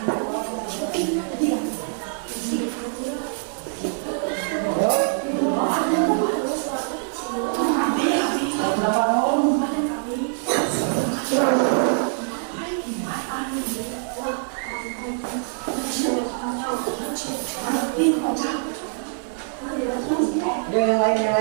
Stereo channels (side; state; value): left; silent; digital silence